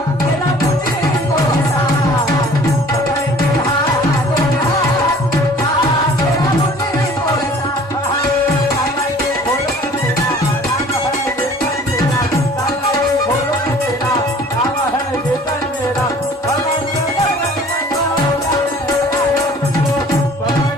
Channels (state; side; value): normal; both; correlation 0.50